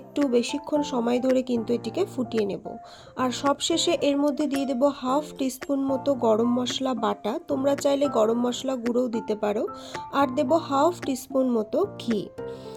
বেশিক্ষণ সময় ধরে কিন্তু এটিকে ফুটিয়ে নেব। আর সবশেষে এর মধ্যে দিয়ে দেব হাফ টিস্পুন মতো গরম মশলা বাটা, তোমরা চাইলে গরম মশলা গুঁড়োও দিতে পারো, আর দেব হাফ টিস্পুন মতো ঘি।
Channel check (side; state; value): both; identical; correlation 1.00